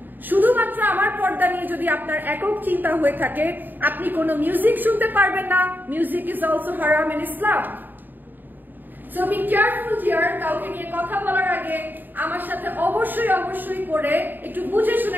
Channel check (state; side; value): late; left; 0.090 ms